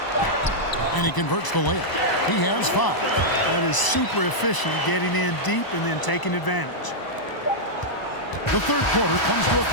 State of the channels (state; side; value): late; right; 1.0 ms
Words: And he converts the layup. He has 5. That is super efficient, getting in deep and then taking advantage. The third quarter comes to a